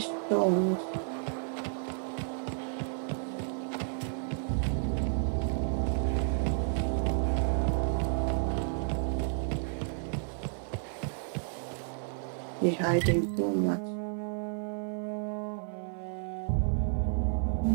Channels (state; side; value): silent; left; 57 dB below the other